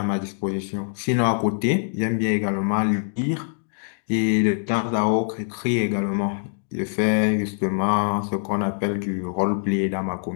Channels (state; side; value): silent; right; digital silence